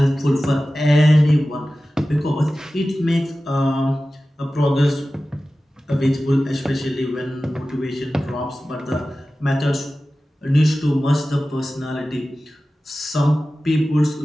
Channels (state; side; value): normal; both; correlation 0.95